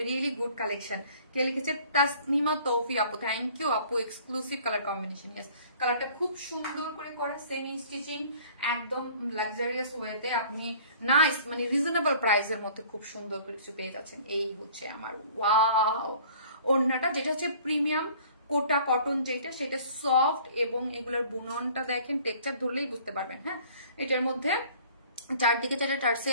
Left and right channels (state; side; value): inverted; both; correlation -0.51